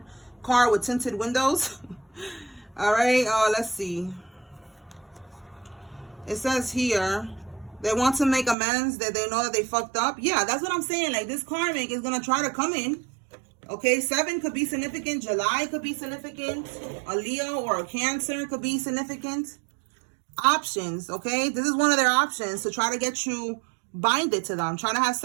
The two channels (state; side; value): drops out; left; at 8.6 s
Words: car with tinted windows. All right, let's see. It says here they want to make amends, that they know that they fucked up. Yeah, that's what I'm saying. Like, this karmic is gonna try to come in. Okay, 7 could be significant. July could be significant. A Leo or a Cancer could be significant. Options. Okay, this is one of their options to try to get you binded to them, trying to have